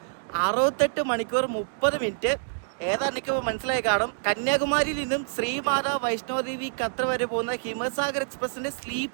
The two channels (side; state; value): left; silent; digital silence